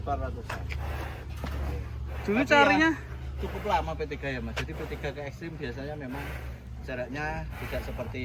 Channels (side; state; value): both; identical; correlation 1.00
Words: Dulu carinya Cukup lama P3 ya Mas. Jadi P3 ke ekstrim biasanya memang jaraknya tidak